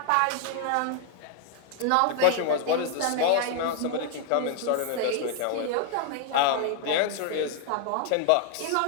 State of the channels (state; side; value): different; both; correlation 0.00